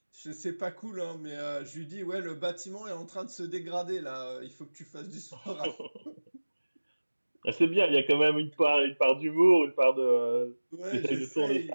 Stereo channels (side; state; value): both; inverted; correlation -1.00